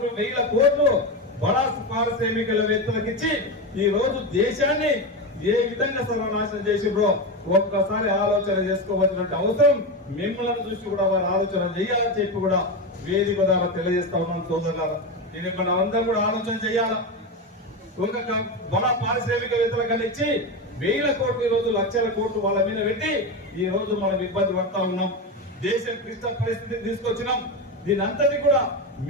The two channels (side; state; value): both; normal; correlation 0.16